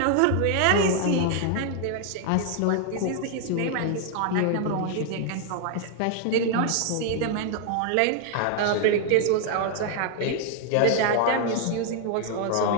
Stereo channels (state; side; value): different; both; correlation 0.00